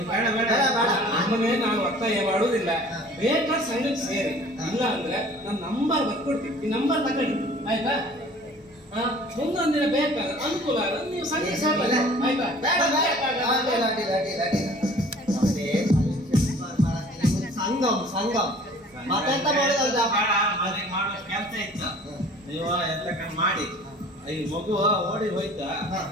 ನಮ್ಮನೆ ನಾವು ಒತ್ತಾಯ ಮಾಡುವುದಿಲ್ಲ ಬೇಕಾದ್ರೆ ಸಂಘಕ್ಕೆ ಸೇರಿ ಇಲ್ಲ ಅಂದ್ರೆ ನಾನು ನಂಬರ್ ಬರ್ಕೊಡ್ತೀನಿ ಈ ನಂಬರ್ ತಗೊಂಡು ಆಯ್ತಾ ಮುಂದೊಂದಿನ ಬೇಕಾದ್ರೆ ಅನುಕೂಲ ಆದ್ರೆ ನೀವು ಸಂಘಕ್ಕೆ ಸೇರಲ್ಲ ಆಯ್ತಾ ಸಂಗಮ್ ಸಂಗಮ್ ಮತ್ತೆಂತ ಮಾಡೋದಲ್ದ ಮಾಡೋ ಕೆಲಸ ಇತ್ತು ನೀವು ಎಂತ ಮಾಡಿ ಈ ಮಗು ಓಡಿ ಹೋಯ್ತಾ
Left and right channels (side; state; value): both; normal; correlation 0.49